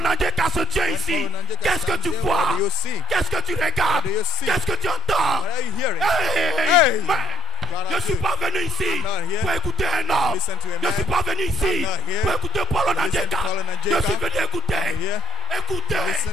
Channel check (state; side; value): normal; both; correlation 0.67